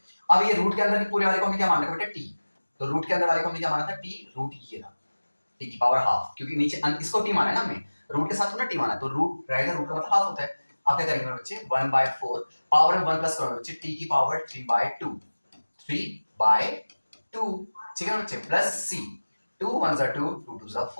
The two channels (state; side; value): inverted; both; correlation -1.00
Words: अब ये रूट के अंदर के पूरे वाले को हमने क्या मान रखा बेटा t, तो रूट के अंदर वाले को हमने क्या माना था t, रूट ये था t की पावर हाफ, क्योंकि नीचे इसको t माना है ना हमने, रूट के साथ थोड़ा t माना है, तो रूट रहेगा, रूट का मतलब हाफ होता है। आप क्या करेंगे बच्चे 1/4 पावर में 1 प्लस करोगे बच्चे t की पावर 3/2 3/2, ठीक है बच्चे, plus c, 2 1s are 2 2 2s are